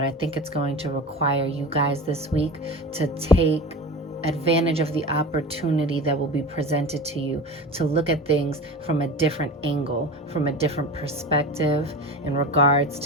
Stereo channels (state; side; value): normal; both; correlation 0.31